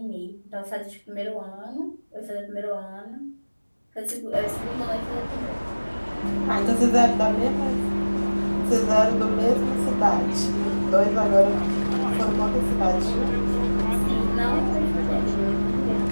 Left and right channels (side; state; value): both; inverted; correlation -1.00